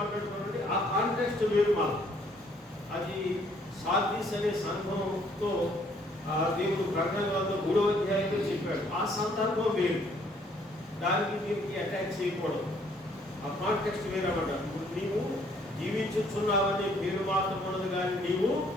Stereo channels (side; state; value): both; normal; correlation 0.64